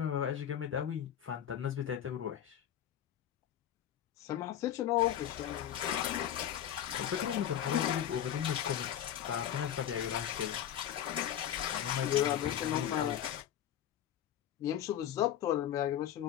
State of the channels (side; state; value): right; quieter; 10.5 dB